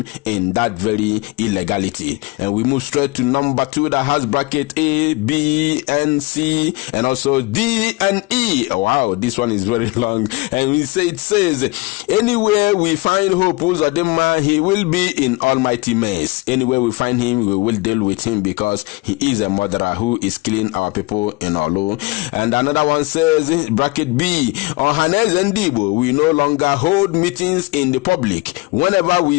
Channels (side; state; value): right; quieter; 24.0 dB